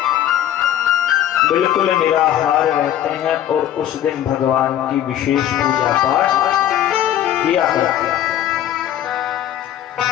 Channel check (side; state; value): right; quieter; 11.5 dB